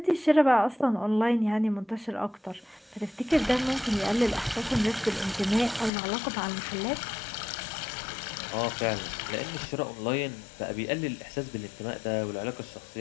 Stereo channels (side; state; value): right; drops out; at 5.9 s